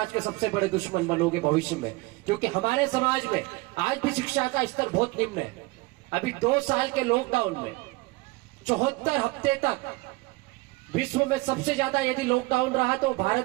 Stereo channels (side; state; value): left; quieter; 23.0 dB